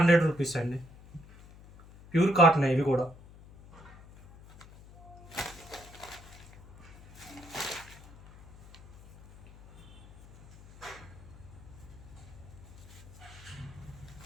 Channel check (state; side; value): noise; left; hum, 20 dB below the sound